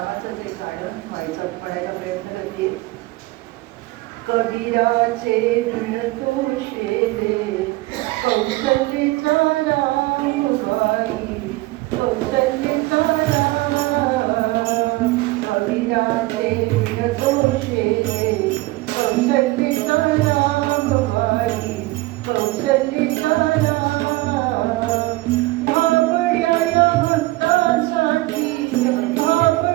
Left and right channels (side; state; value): left; quieter; 20.2 dB